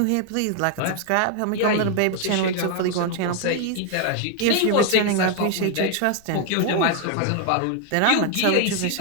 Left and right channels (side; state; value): both; different; correlation 0.00